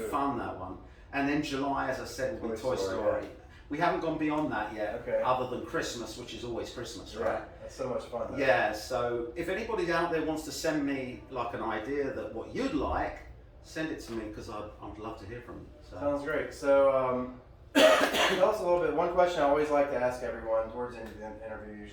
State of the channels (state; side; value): identical; both; correlation 1.00